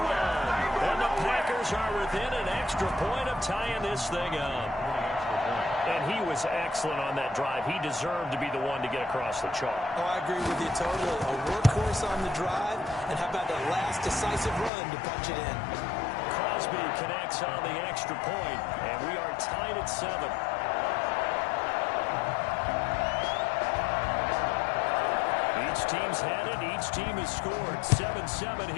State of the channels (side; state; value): right; drops out; at 14.7 s